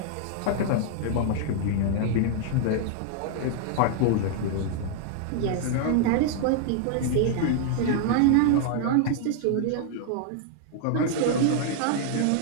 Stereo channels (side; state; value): both; different; correlation -0.01